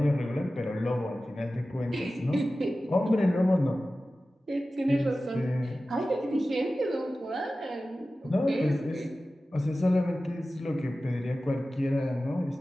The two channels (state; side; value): normal; both; correlation 0.95